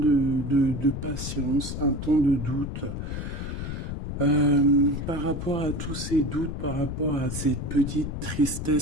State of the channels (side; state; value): left; noise; rumble, 5 dB below the sound